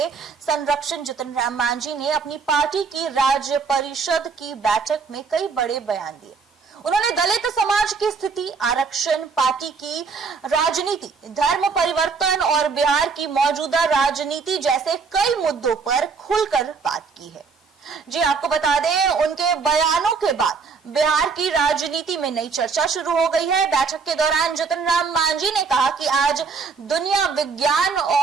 संरक्षण जितन राम मांझी ने अपनी पार्टी की राज्य परिषद की बैठक में कई बड़े बयान दिए। उन्होंने दलित समाज की स्थिति, आरक्षण, पार्टी की राजनीति, धर्म परिवर्तन और बिहार की मौजूदा राजनीति जैसे कई मुद्दों पर खुलकर बात की है। जी आपको बता दें, उनके बयानों के बाद बिहार की राजनीति में नई चर्चा शुरू हो गई है। बैठक के दौरान जितन राम मांझी ने कहा कि आज दुनिया विज्ञान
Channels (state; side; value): quieter; left; 5.1 dB